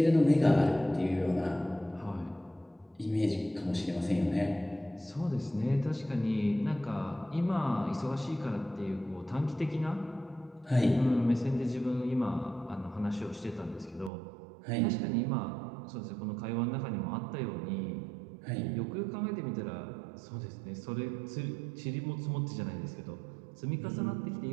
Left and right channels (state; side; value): drops out; left; at 14.1 s